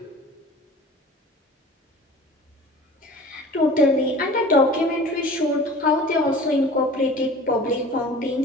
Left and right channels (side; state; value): both; normal; correlation 0.42